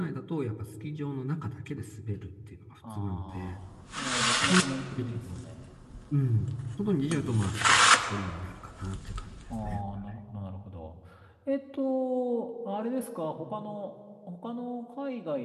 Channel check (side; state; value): both; identical; correlation 1.00